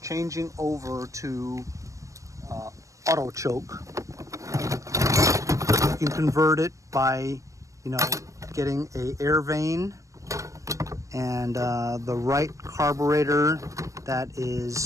over to auto choke. You can convert it by, getting a air vane and the right carburetor that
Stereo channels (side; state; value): left; late; 0.15 ms